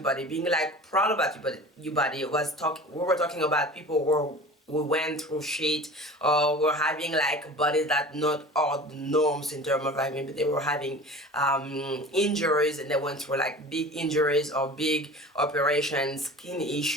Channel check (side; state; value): both; normal; correlation 0.39